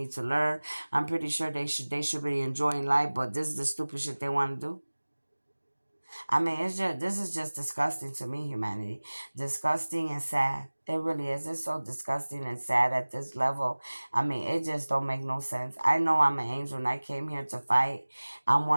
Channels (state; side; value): inverted; both; correlation -1.00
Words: to learn. I'm pretty sure they should be enjoying life, but this is the stupid shit they want to do. I mean, this is just disgusting to me, humanity. Disgusting and sad. It really is. It's so disgusting and sad at this level. I mean, it just don't make no sense. I know I'm an angel and I came here to fight. I'm